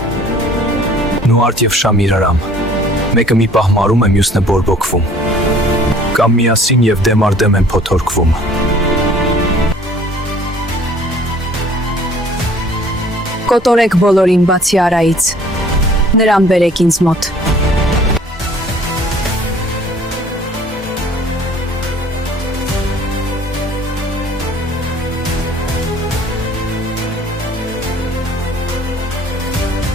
Նուարդ և Շամիրարամ։ Մեկը մի պահ մարում է, մյուսն է բորբոքվում։ Կամ միասին և դեմ առ դեմ են փոթորկվում։ Կոտորեք բոլորին բացի Արայից։ Նրան բերեք ինձ մոտ։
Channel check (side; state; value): both; normal; correlation 0.53